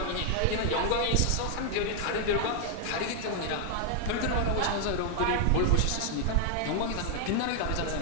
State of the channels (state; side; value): different; both; correlation 0.00